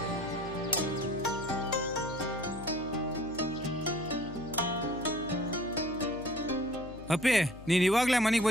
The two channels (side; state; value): left; noise; hum, 15 dB below the sound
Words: ಅಪ್ಪಿ ನೀನ್ ಇವಾಗ್ಲೇ ಮನೆಗೆ